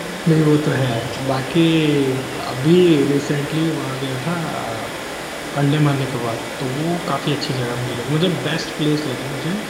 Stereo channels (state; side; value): identical; both; correlation 1.00